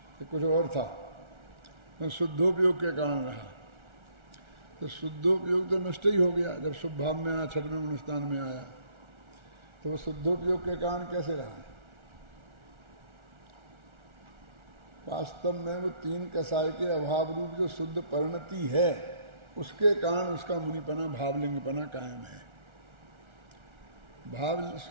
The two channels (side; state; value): left; late; 1.4 ms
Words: कि कुछ और था, तो शुद्धोपयोग के कारण रहा। तो शुद्धोपयोग तो नष्ट ही हो गया जब शुभ भाव में आया, 6वें अनुष्ठान में आया, तो वो शुद्धोपयोग के कारण कैसे रहा? वास्तव में वो 3 कसाय के अभाव रूप जो शुद्ध परिणति है, उसके कारण उसका मुनिपना, भावलिंगपना कायम है। भाव